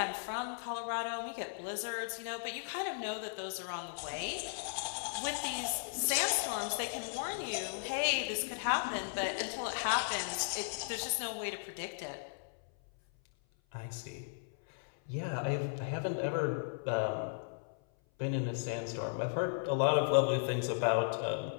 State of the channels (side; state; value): right; silent; 54 dB below the other